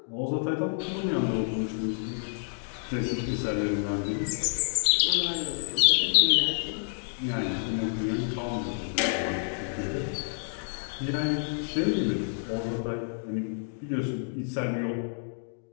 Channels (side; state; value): right; silent; digital silence